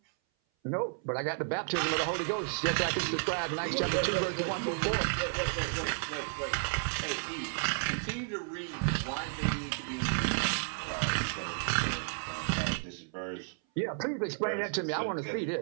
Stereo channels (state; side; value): silent; left; 56 dB below the other